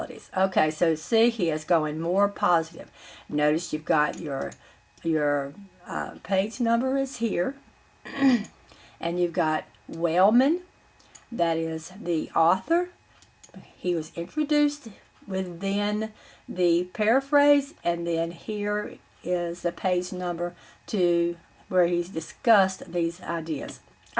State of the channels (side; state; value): both; identical; correlation 1.00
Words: Okay, so see, he is going more positive. Notice you've got your page number is here, and you've got Wellman, that is the author. He was introduced within the paraphrase, and then here is the page number to where he's discussed these ideas.